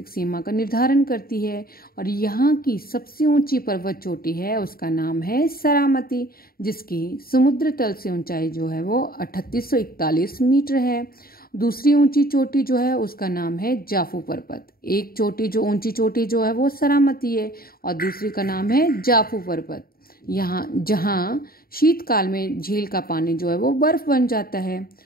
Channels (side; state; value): right; late; 0.43 ms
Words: सीमा का निर्धारण करती है और यहाँ की सबसे ऊंची पर्वत चोटी है उसका नाम है सरामती, जिसकी समुद्र तल से ऊंचाई जो है वो 3841 मीटर है। दूसरी ऊंची चोटी जो है उसका नाम है जाफू पर्वत। एक चोटी जो ऊंची चोटी जो है वो सरामती है और दूसरी का नाम है जाफू पर्वत। यहाँ जहाँ शीतकाल में झील का पानी जो है वो बर्फ बन जाता है।